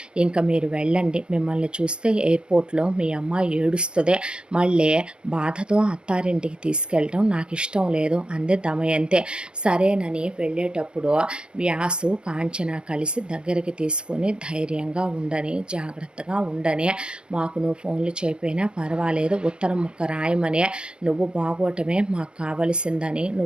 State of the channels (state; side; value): late; left; 0.055 ms